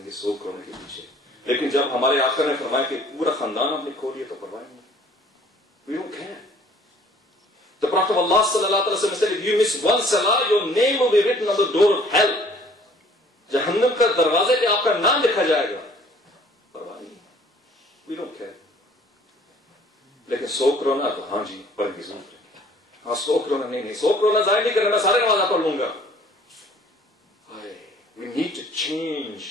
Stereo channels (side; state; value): both; normal; correlation 0.55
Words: گے 100 کرونا کے پیچھے. لیکن جب ہمارے آقا نے فرمایا کہ پورا خاندان آپ نے کھو لیا تو پرواہ نہیں. We don't care. The Prophet of Allah sallallahu alaihi wasallam said, if you miss one salah, your name will be written on the door of hell. جہنم کا دروازے پہ آپ کا نام لکھا جائے گا. پرواہ نہیں. We don't care. لیکن 100 کرونا تو ہاں جی پڑھ گی ضرور. ہاں 100 کرونا نہیں, 100 کرونا ضائع نہیں کرنا, میں سارے نماز پڑھ لوں گا. We need to change